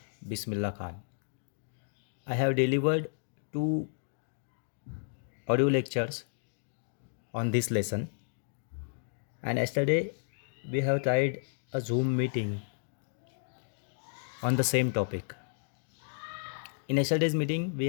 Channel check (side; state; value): right; silent; digital silence